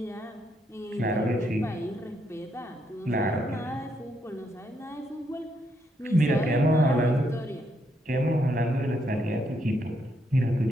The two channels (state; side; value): normal; both; correlation 0.76